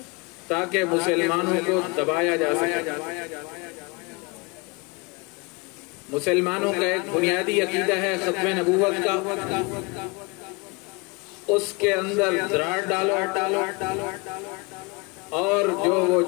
تاکہ مسلمانوں کو دبایا جا سکے۔ مسلمانوں کا ایک بنیادی عقیدہ ہے ختم نبوت کا، اس کے اندر دراڑ ڈالو اور جو وہ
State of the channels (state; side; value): quieter; right; 28.1 dB